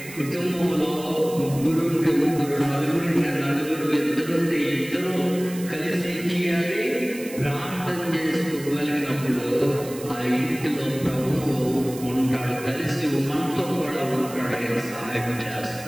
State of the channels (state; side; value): noise; right; hiss, 15 dB below the sound